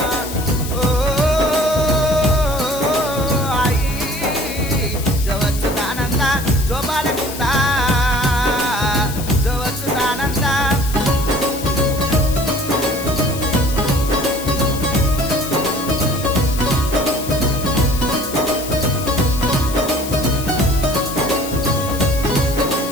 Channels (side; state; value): left; noise; hiss, 10 dB below the sound